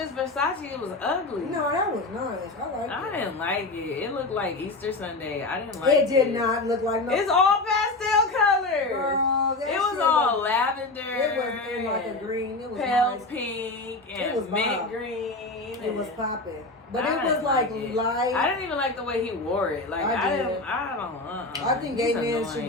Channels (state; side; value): quieter; right; 3.1 dB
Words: Versace. It was ugly. No, that was nice. I liked I it. didn't like it. It looked like Easter Sunday. I didn't like it. It did not look like no. It's all pastel colors. Girl, that It was shit all looked- lavender. It was in like a green. It was pale nice. pink It and was mint bomb. green. It was and- popping. But I it was didn't like it. light. I didn't even like the way he wore it. Like I I did. don't. I think gay He's men should